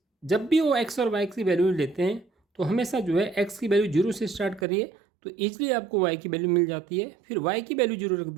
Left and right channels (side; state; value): left; drops out; at 4.7 s